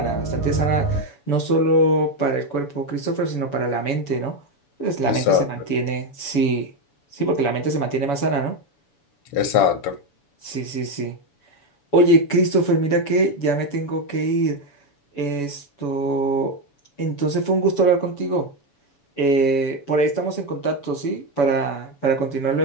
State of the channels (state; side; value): late; right; 7.0 ms